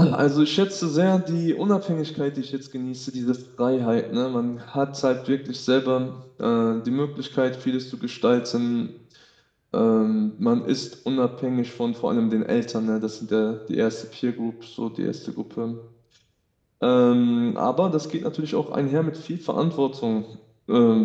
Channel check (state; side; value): identical; both; correlation 1.00